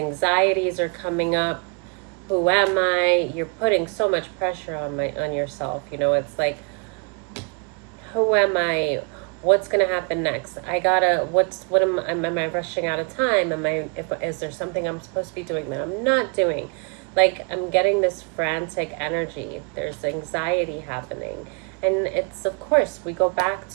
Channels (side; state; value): left; quieter; 36.5 dB